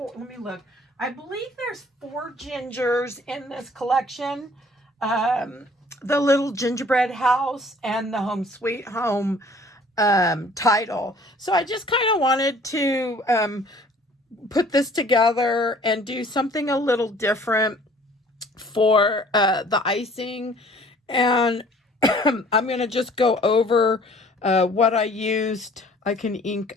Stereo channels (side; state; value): both; normal; correlation 0.54